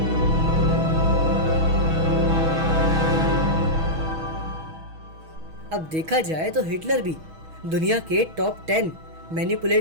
अब देखा जाए तो हिटलर भी दुनिया के टॉप 10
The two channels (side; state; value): left; late; 6.2 ms